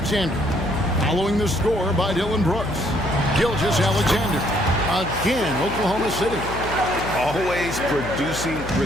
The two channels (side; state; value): left; noise; hum, 9 dB below the sound